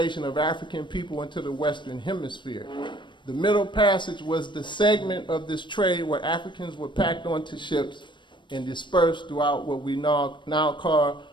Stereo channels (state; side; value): late; right; 0.23 ms